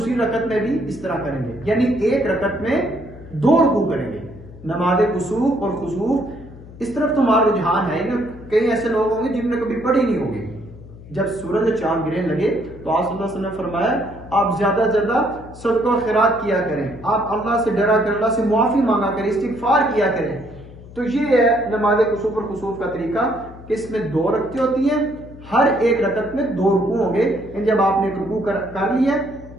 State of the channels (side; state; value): left; noise; hum, 18 dB below the sound